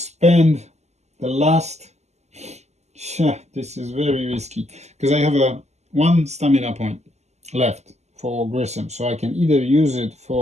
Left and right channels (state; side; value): late; left; 0.33 ms